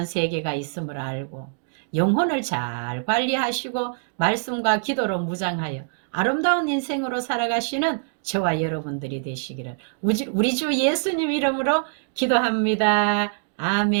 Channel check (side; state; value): left; silent; digital silence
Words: 세계가 있음을 알고 영혼을 잘 관리하시고 말씀과 기도로 무장하여 아름다운 인생으로 살아가시는 저와 여러분들이 되시기를 우리 주 예수님 이름으로 기도합니다.